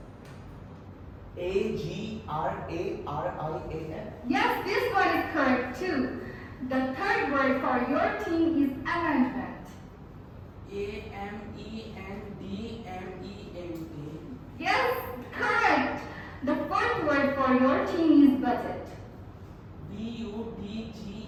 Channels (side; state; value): both; identical; correlation 1.00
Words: AGRARIAN. Yes, this one is correct too. The third word for your team is amendment. AMENDMENT. Yes, correct. The fourth word for your team is budget. BUDGET.